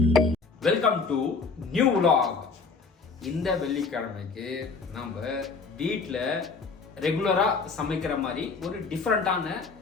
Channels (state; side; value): quieter; right; 4.6 dB